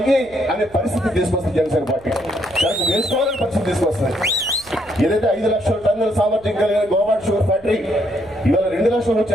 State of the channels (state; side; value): noise; right; hum, 26 dB below the sound